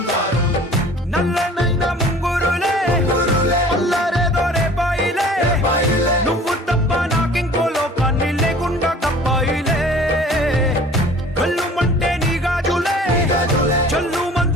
దారం. నల్లనైన ముంగురులే అల్లారేదో రేపాయిలే, నువ్వు తప్ప నాకింకో లోకాన్ని లేకుండా కప్పాయిలే. కళ్ళు మంటే నీ గాజులే చల్లు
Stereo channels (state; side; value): normal; both; correlation 0.47